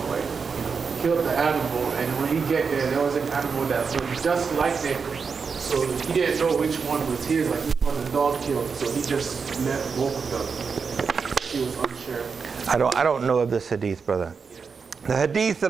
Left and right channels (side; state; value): left; quieter; 5.5 dB